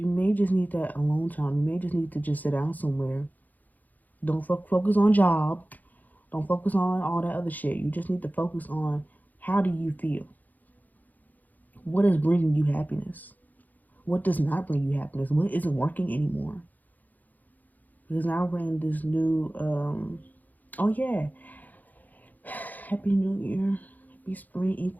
may just need that alone time. You may just need to just sit down somewhere. Don't focus on job. Don't focus on all that other shit. You just need to focus on, how do you feel? What is bringing you happiness? What does not bring you happiness? What isn't working anymore? Because now we're in this new, oh yeah, Happy New Year, Happy Spring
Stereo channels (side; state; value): right; late; 0.082 ms